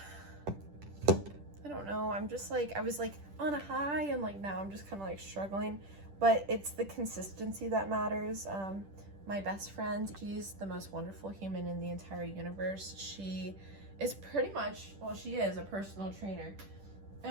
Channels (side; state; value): left; late; 10 ms